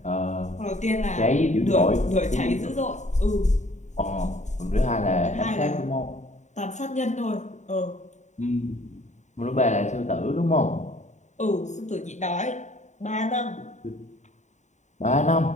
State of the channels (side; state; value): right; late; 0.34 ms